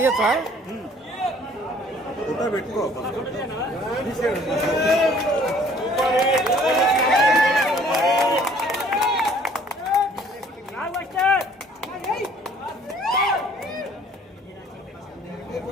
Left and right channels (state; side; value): normal; both; correlation 0.56